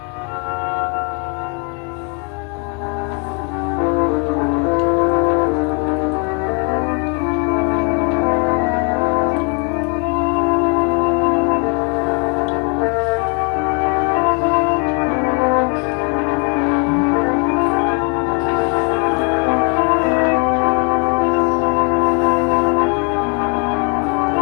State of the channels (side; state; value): right; quieter; 36.7 dB